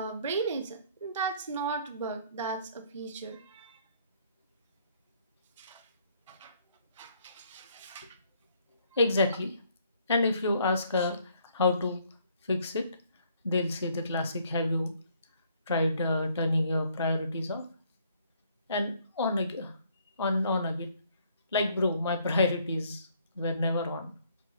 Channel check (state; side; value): inverted; both; correlation -0.65